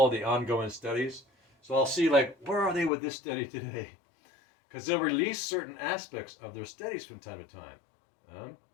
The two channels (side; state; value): right; drops out; at 2.9 s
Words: the ongoing studies. So I'll see, like, where are they with this study today? Because they'll release certain aspects of their studies from time to time.